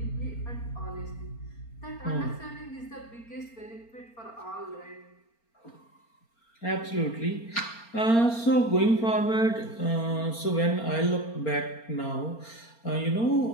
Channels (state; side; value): late; right; 4.3 ms